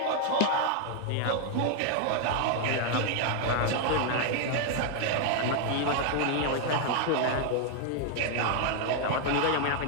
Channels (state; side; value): different; both; correlation 0.00